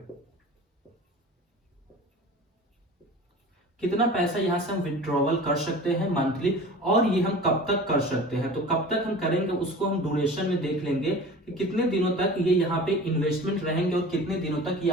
कितना पैसा यहां से हम विड्रॉवल कर सकते हैं मंथली और ये हम कब तक कर सकते हैं। तो कब तक हम करेंगे उसको हम ड्यूरेशन में देख लेंगे कि कितने दिनों तक ये यहाँ पे इन्वेस्टमेंट रहेंगे और कितने दिनों तक ये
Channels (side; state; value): both; normal; correlation 0.38